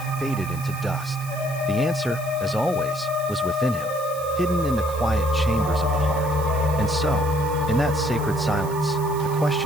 faded into dust. The answer, as always, was within him, hidden in the quiet chambers of the heart. And so, in that sacred silence, the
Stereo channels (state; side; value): noise; right; hiss, 16 dB below the sound